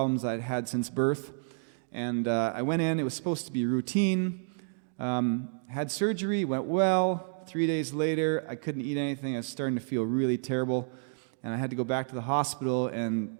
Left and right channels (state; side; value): silent; left; digital silence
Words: I'd had since birth. And I went in. It was supposed to be routine. Had surgery, went well. 3 days later, I couldn't eat anything. I was starting to feel really terrible. And I had to go back to the hospital, and